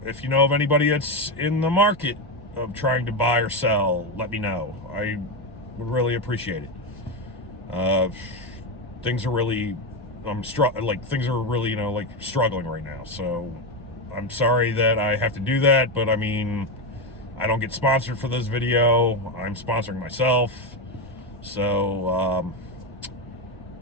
If you know of anybody that's in the market of trying to buy or sell, let me know. I would really appreciate it. Things are really, struggling right now. So I'm sorry that I have to do that, but I don't get sponsored for this video. I'm sponsoring myself. So,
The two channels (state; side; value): normal; both; correlation 0.11